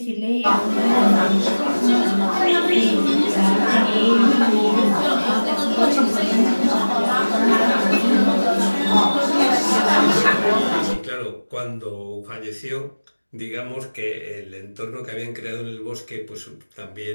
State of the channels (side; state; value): both; inverted; correlation -1.00